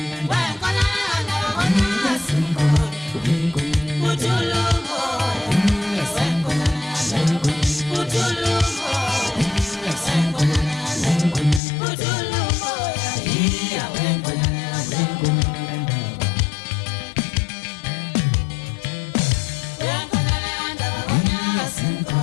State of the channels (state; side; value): drops out; right; at 11.6 s